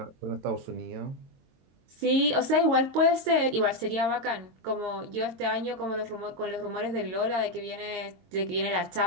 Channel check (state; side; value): late; left; 22 ms